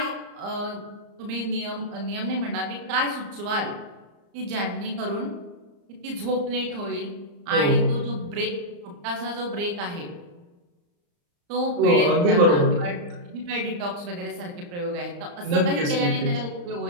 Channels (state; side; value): late; left; 34 ms